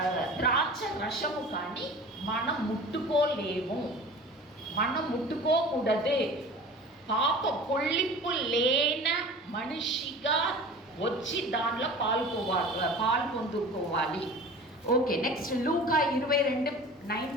ద్రాక్ష రసము కానీ మనం ముట్టుకోలేము, మనం ముట్టుకోకూడదే. పొల్లింపు లేన మనిషిగా వచ్చి దానిలో పాలు పొందుకోవాలి. ఓకే, నెక్స్ట్ లూకా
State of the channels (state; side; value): normal; both; correlation 0.39